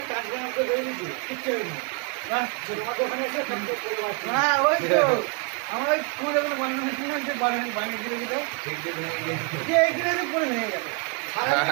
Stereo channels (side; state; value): left; quieter; 35.7 dB